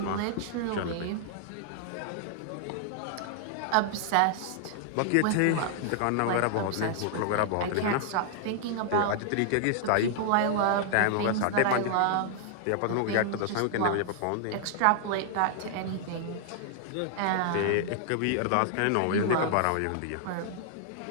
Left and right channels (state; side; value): different; both; correlation -0.01